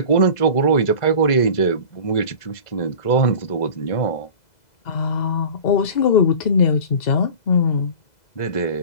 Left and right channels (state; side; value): late; right; 2.0 ms